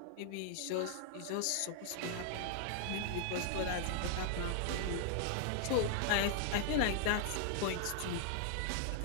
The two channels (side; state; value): both; different; correlation 0.00